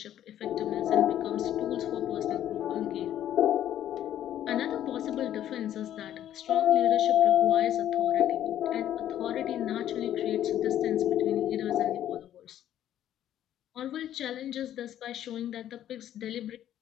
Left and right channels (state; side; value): quieter; right; 11.5 dB